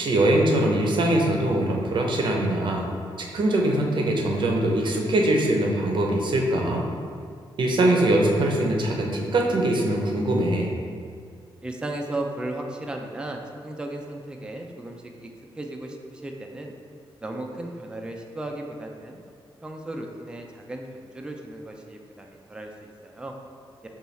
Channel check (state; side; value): normal; both; correlation 0.73